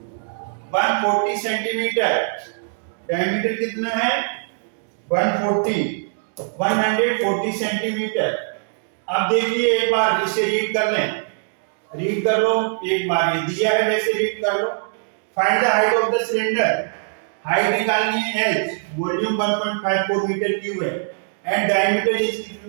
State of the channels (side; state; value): left; silent; digital silence